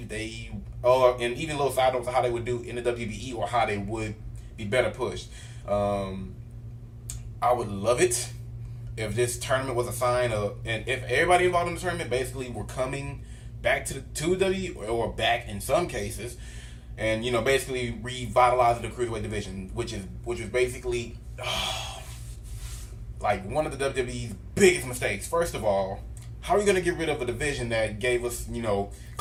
they, and even little side notes of how they would do in the WWE or how they would be better pushed. I would love it if this tournament was a sign of, and if everybody involved in the tournament basically were coming back to WWE or back in some cases, and basically revitalizing the cruiserweight division, which is basically like one of the WWE's biggest mistakes. First of all, how are you gonna get rid of a division that gave us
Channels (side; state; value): both; identical; correlation 1.00